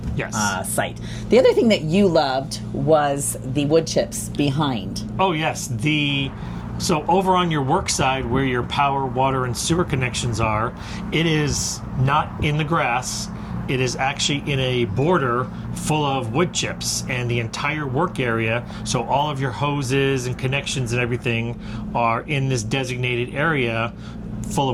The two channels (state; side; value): identical; both; correlation 1.00